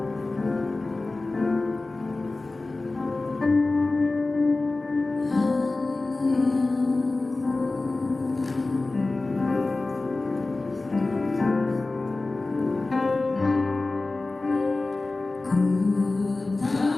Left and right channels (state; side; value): quieter; right; 3.3 dB